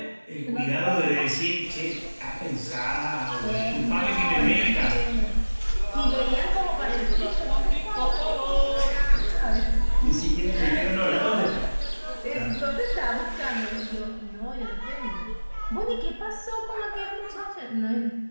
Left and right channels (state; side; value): inverted; both; correlation -1.00